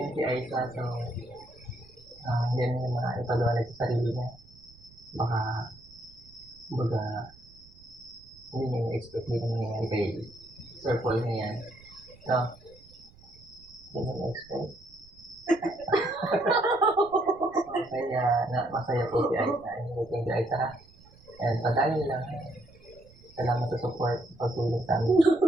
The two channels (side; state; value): right; noise; rumble, 24 dB below the sound